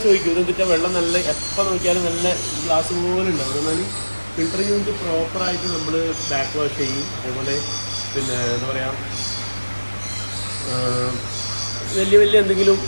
ചോദിക്കും ഇതെന്തിട്ടാ വെള്ളം നല്ല എപ്പോൾ നോക്കിയാലും നല്ല ഗ്ലാസ് പോലെ ഉണ്ടാവും. എന്നാൽ ഫിൽറ്ററിങ് യൂണിറ്റ് പ്രോപ്പറായിട്ട് നമ്മൾ ബാക്ക് വാഷ് ചെയ്യും. അതേപോലെ പിന്നെ എന്താ പറയുക, വലിയ എന്തെങ്കിലും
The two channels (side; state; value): both; inverted; correlation -1.00